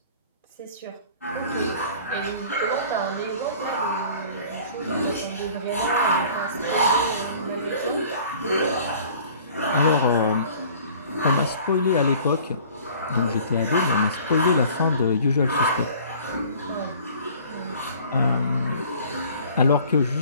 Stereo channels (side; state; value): both; inverted; correlation -0.50